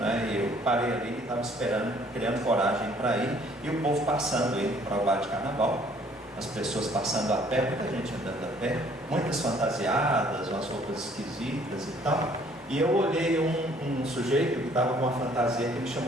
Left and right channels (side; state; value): both; normal; correlation 0.60